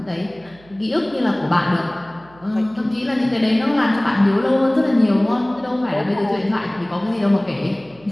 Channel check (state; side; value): noise; right; hum, 26 dB below the sound